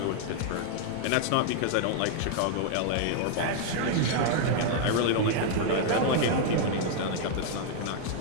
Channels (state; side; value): different; both; correlation 0.00